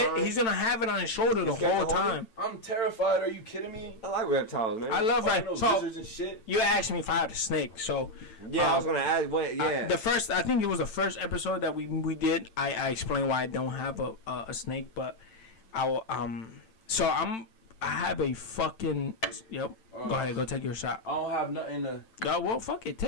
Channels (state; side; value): late; right; 9.0 ms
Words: it. He's gonna have it on his shoulder the whole time. I'm terrified. Are you kidding me? I like reptiles, man. I love Fucking that. those So lizards and shit. you asked me if I had a snake. So Yeah, I was going to ask. What? Yeah. I think it was the first episode that we did. I explained why I don't have a snake, but I will, I have a fucking Go ahead, go take your shot. I don't have nothing to. Well, fuck it,